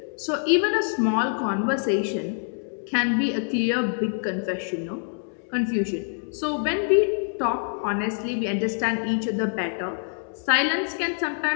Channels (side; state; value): right; silent; digital silence